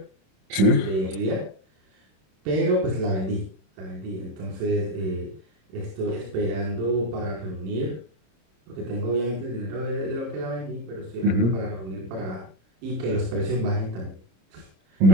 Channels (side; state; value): left; late; 26 ms